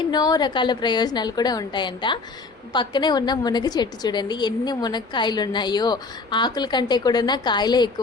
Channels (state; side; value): quieter; right; 4.0 dB